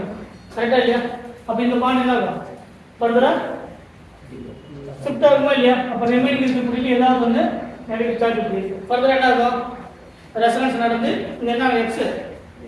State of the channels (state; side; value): identical; both; correlation 1.00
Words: கரெக்டா இல்லையா? அப்ப இந்த பாண்ட் என்ன ஆகும்? ஃபர்தரா ஷிஃப்ட் ஆகுமா இல்லையா? அப்ப ரிமைனிங் இருக்கக்கூடிய ஏதாவது வந்து நெகட்டிவ் சார்ஜ் இருக்கு. ஃபர்தரா என்ன ஆகும்? ரெசனன்ஸ் நடந்து இங்க என்ன எக்ஸ்